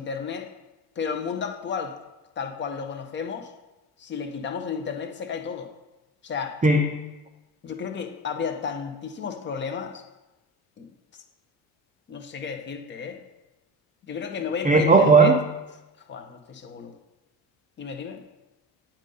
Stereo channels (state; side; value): normal; both; correlation 0.28